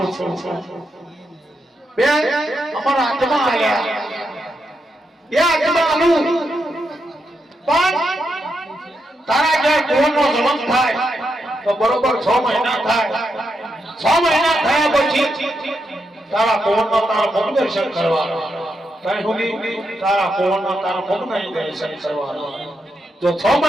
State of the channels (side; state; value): both; normal; correlation 0.83